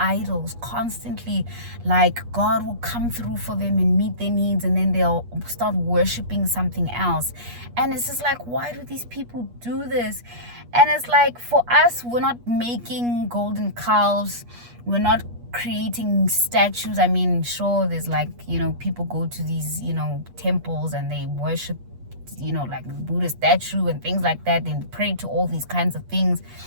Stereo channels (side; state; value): left; late; 8.4 ms